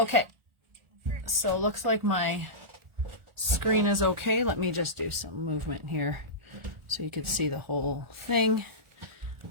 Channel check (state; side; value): late; left; 1.4 ms